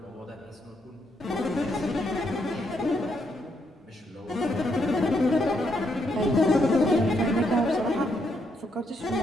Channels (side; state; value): both; normal; correlation 0.77